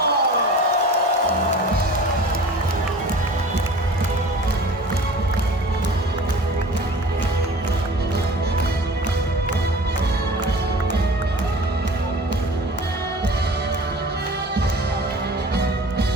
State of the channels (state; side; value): normal; both; correlation 0.42